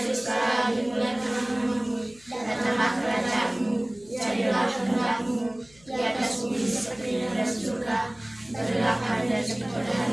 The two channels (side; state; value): left; noise; hum, 27 dB below the sound